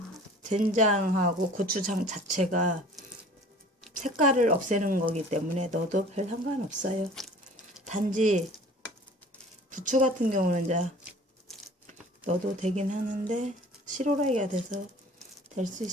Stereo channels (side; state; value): both; normal; correlation 0.47